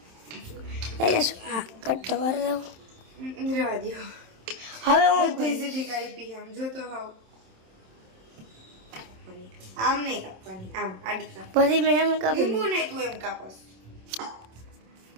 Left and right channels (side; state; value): left; late; 27 ms